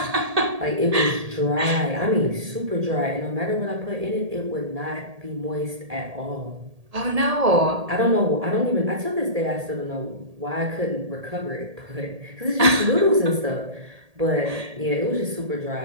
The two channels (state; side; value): late; left; 1.8 ms